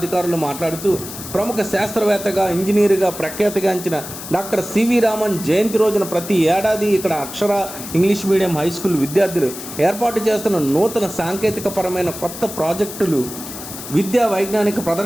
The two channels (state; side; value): noise; left; hiss, 11 dB below the sound